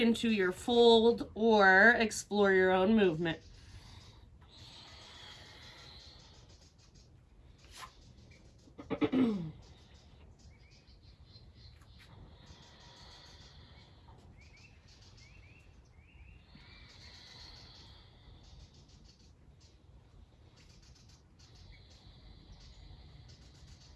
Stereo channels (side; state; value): both; identical; correlation 1.00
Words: your fold or explore your own movement.